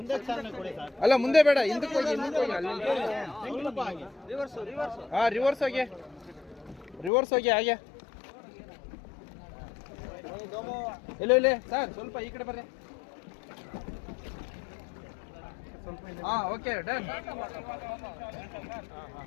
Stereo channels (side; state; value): right; drops out; at 7.1 s